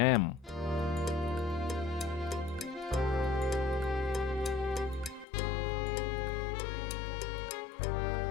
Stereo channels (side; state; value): right; drops out; at 5.2 s